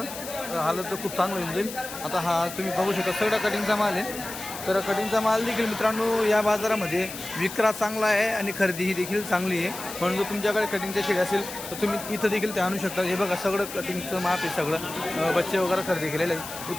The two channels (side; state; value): left; noise; hiss, 10 dB below the sound